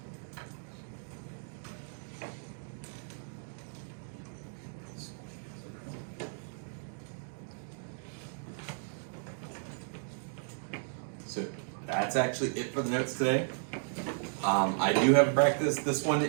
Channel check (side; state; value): left; silent; digital silence